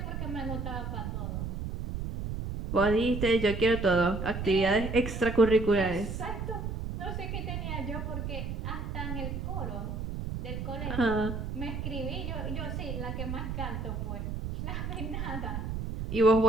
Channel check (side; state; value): right; noise; rumble, 4 dB below the sound